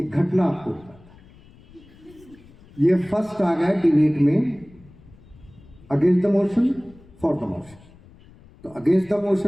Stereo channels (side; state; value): left; noise; rumble, 25 dB below the sound